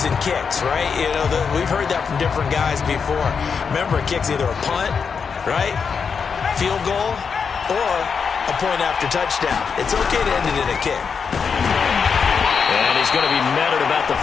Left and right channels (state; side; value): quieter; right; 6.0 dB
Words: and kicks, right? You know, we've heard that from different guys before. Remember, a kick's either a punt, right, field goal, or a point after touchdown. It's okay to end it in a kick. And he he's going to be met at about the